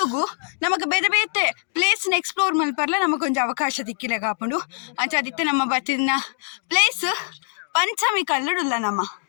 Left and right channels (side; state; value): right; silent; 57 dB below the other